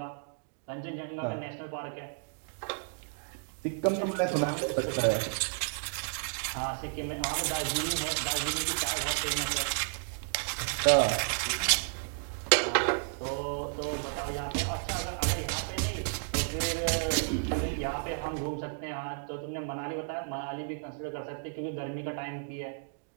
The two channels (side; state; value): left; silent; digital silence